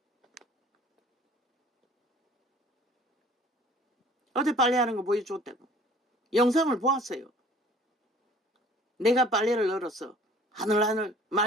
어제 빨래하는 거 보여줬다고. 영상을 보았어요. 내가 빨래를 널어서 하늘하늘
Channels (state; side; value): normal; both; correlation 0.52